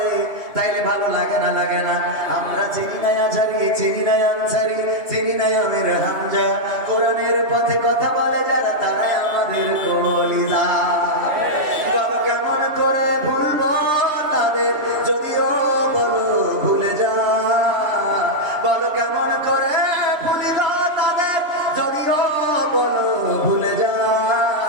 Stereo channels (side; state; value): left; late; 3.1 ms